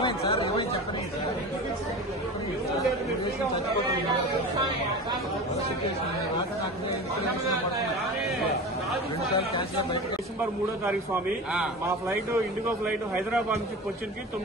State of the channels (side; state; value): both; normal; correlation 0.31